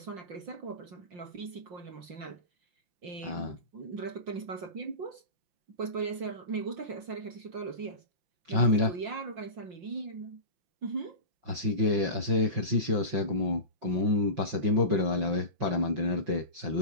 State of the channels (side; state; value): left; late; 5.6 ms